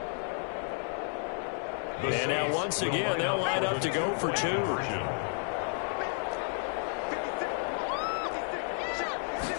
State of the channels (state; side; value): silent; right; 57 dB below the other